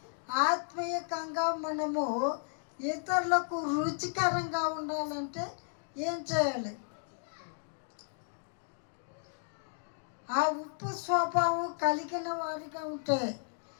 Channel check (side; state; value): right; silent; digital silence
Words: ఆత్మీయంగా మనము ఇతరులకు రుచికరంగా ఉండాలంటే ఏం చేయాలి? ఆ ఉప్పు స్వభావం కలిగిన వారిగా ఉంటే